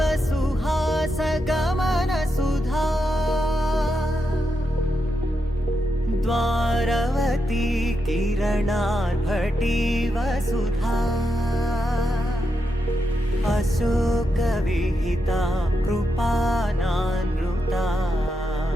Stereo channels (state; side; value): normal; both; correlation 0.85